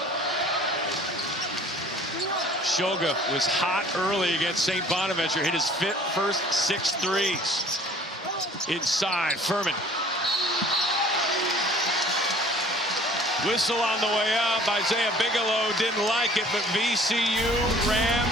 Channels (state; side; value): normal; both; correlation 0.51